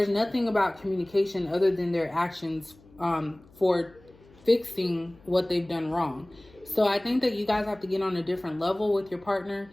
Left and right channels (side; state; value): left; noise; hum, 26 dB below the sound